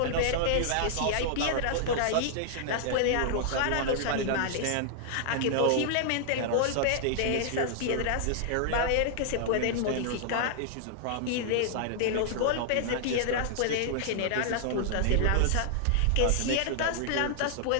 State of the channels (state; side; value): different; both; correlation -0.01